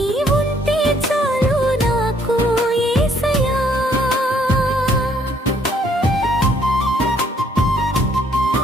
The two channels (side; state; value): both; normal; correlation 0.66